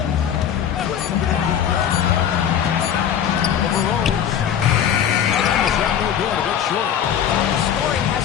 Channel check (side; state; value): right; quieter; 9.1 dB